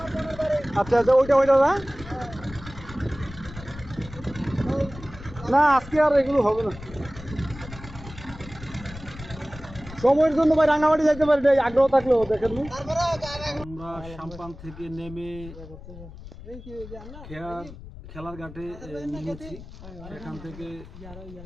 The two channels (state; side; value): noise; left; rumble, 15 dB below the sound